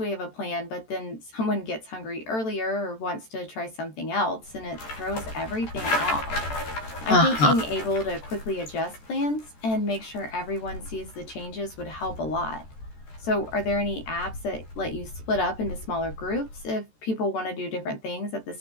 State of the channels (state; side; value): late; right; 13 ms